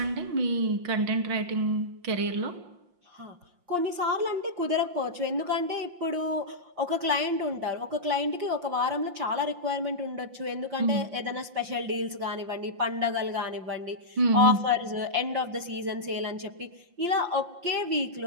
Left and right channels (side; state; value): left; late; 5.7 ms